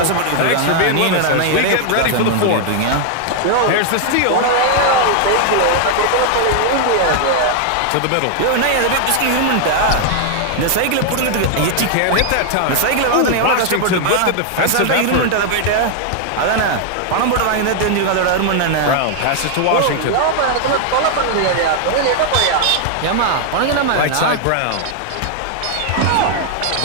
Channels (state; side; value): different; both; correlation 0.00